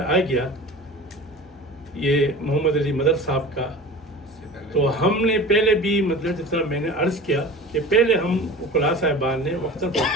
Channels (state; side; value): normal; both; correlation 0.37